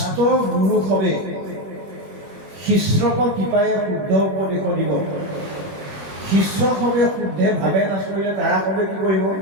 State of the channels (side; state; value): left; late; 20 ms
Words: গুৰু সবে শিষ্যক কৃপায়ে শুদ্ধ উপদেশ দিব। শিষ্য সবে শুদ্ধে ভাৱে নাচৰিলে তাৰা সবে কি কৰিব?